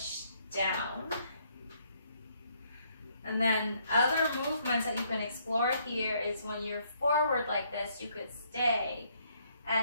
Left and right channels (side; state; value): both; inverted; correlation -0.69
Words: down. And then other movements that you can explore here is when you're forward like this, you could stay